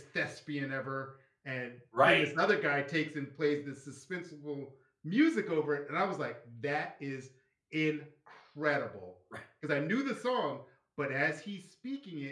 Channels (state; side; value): identical; both; correlation 1.00